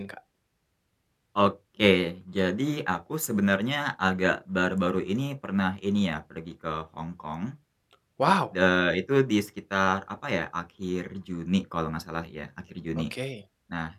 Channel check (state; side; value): identical; both; correlation 1.00